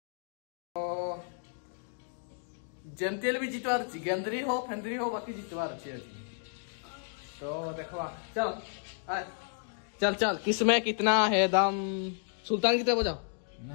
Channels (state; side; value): silent; right; digital silence